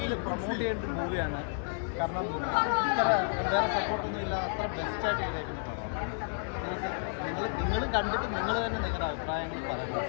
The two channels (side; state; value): right; silent; 56 dB below the other